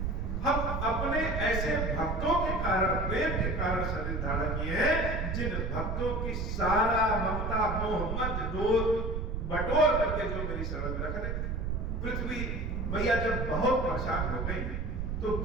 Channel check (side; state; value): right; noise; rumble, 2 dB below the sound